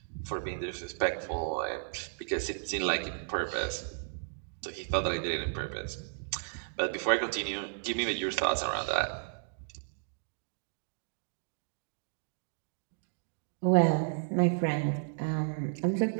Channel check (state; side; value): silent; left; digital silence